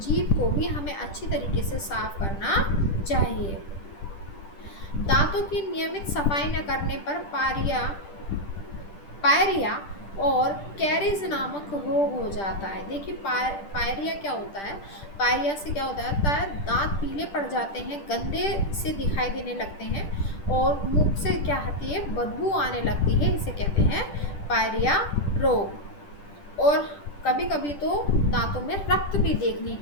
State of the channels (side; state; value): right; late; 10 ms